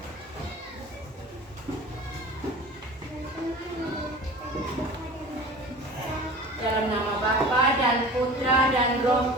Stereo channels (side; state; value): both; normal; correlation 0.39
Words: Dalam nama Bapa dan Putra dan Roh